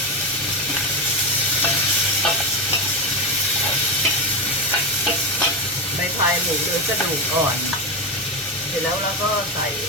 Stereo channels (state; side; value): normal; both; correlation 0.14